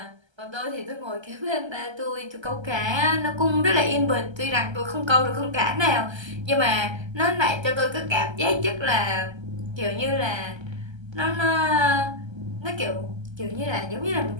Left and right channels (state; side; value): late; left; 1.3 ms